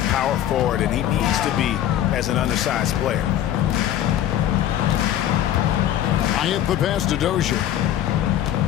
power forward, and he needs to be as an undersized player. I hit the pass to Dozier.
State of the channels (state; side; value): quieter; right; 11.6 dB